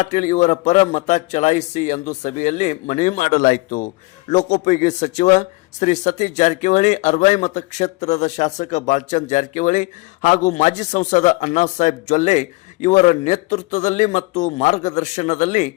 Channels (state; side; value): quieter; right; 23.6 dB